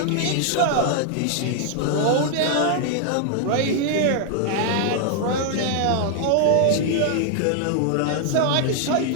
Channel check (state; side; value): different; both; correlation 0.00